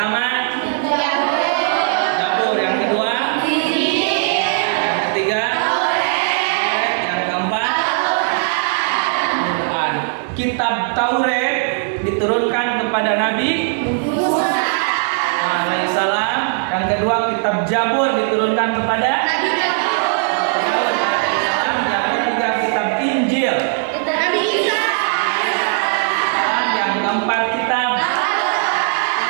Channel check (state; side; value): silent; left; 67 dB below the other